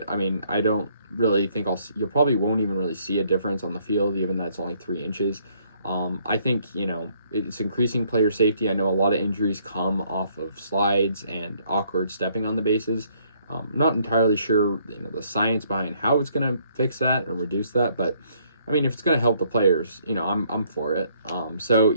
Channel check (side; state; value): both; inverted; correlation -0.66